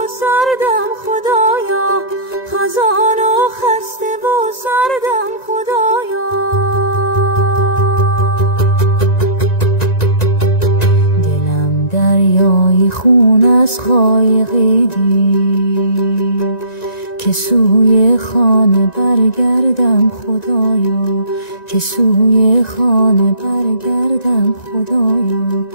سردم خدایا، خزان و خسته و سردم خدایا. دلم دریای خون از خایقی دید، که سوی خانه برگردم خدایا، که سوی خانه برگردم خدایا،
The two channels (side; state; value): right; late; 1.9 ms